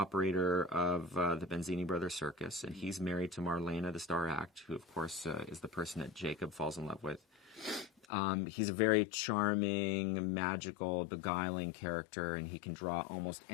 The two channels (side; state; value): right; drops out; at 8.1 s